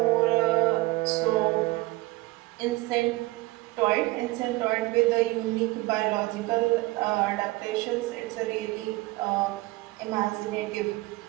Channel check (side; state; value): left; quieter; 20.7 dB